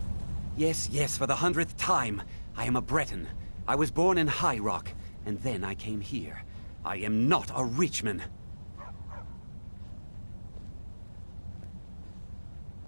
Yes, yes, for the 100th time. I am a Breton. I was born in High Rock, and then I came here. I am not a Richman.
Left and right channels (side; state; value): both; inverted; correlation -1.00